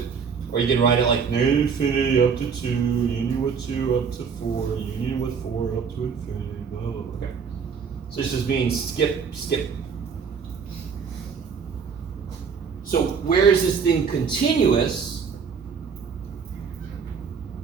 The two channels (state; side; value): quieter; left; 6.2 dB